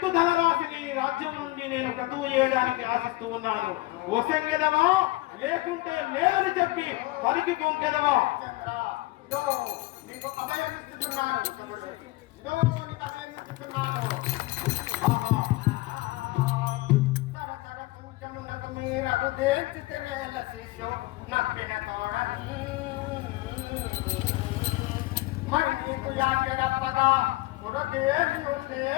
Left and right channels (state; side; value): quieter; right; 20.4 dB